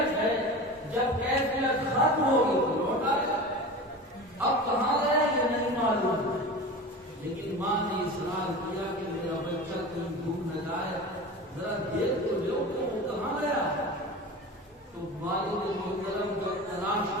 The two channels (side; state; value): both; normal; correlation 0.31